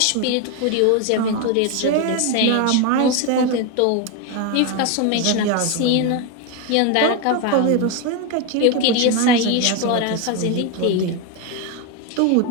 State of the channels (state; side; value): different; both; correlation 0.02